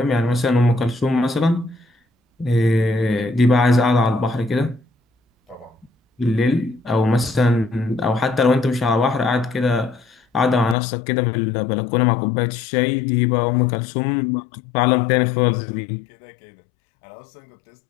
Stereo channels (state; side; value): drops out; right; at 10.8 s